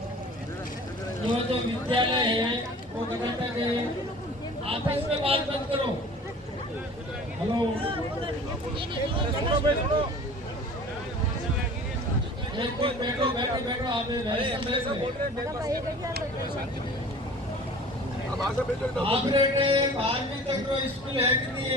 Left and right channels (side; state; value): both; normal; correlation 0.44